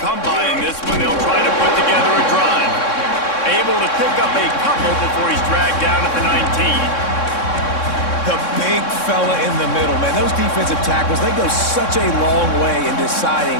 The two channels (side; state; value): right; late; 3.6 ms